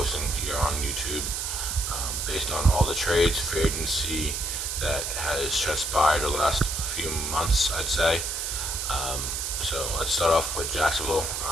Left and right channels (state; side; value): noise; right; hiss, 2 dB below the sound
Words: here on YouTube, based on all the trades, free agency that has transpired the last few months, I'd say. So let's start off with Jacksonville.